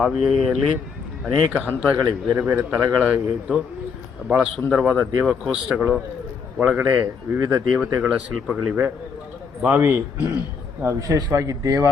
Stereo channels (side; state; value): right; quieter; 5.7 dB